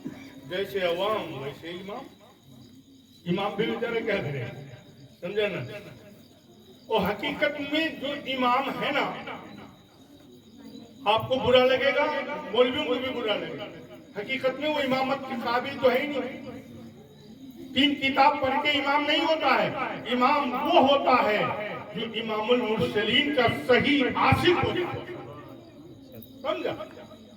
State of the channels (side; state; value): both; identical; correlation 1.00